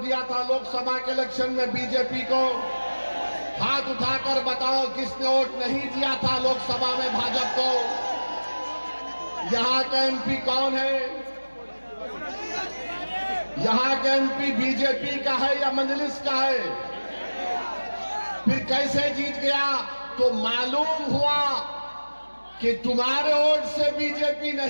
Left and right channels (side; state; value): both; inverted; correlation -1.00